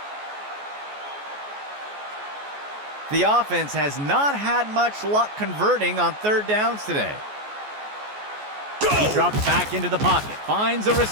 The offense has not had much luck converting on third downs today. He drops back into the pocket. Finds a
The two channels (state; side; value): late; left; 14 ms